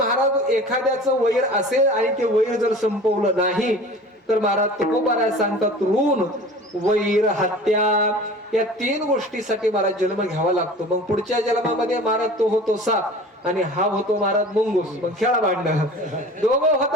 एखाद्याचं वैर असेल आणि ते वैर जर संपवलं नाही तर महाराज तुकोबा सांगतात ऋण, वैर, हत्या या 3 गोष्टीसाठी महाराज जन्म घ्यावा लागतो. मग पुढच्या जन्मामध्ये महाराज तो होतो साप आणि हा होतो महाराज मुंगूस. मग खेळा भांडणं, दोघं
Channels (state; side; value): normal; both; correlation 0.41